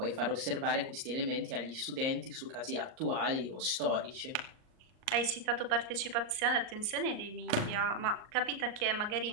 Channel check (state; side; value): late; left; 38 ms